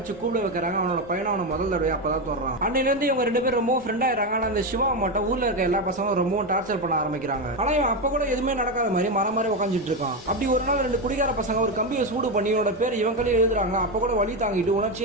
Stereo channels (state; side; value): normal; both; correlation 0.11